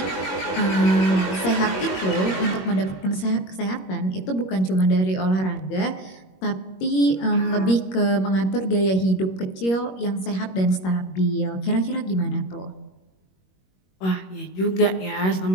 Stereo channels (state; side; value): late; right; 21 ms